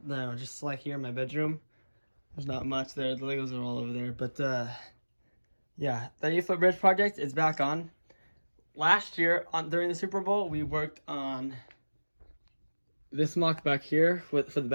just like here in my bedroom. There's not much there. The Legos are all over there. But yeah, the 8-foot bridge project is back on. Last year, during the Super Bowl, we worked on this MOC back here for the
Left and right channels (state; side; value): inverted; both; correlation -1.00